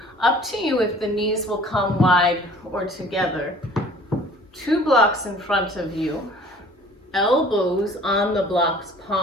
Up to you if the knees will come wide or together. 2 blocks in front of you. Elbows on the blocks,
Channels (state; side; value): normal; both; correlation 0.50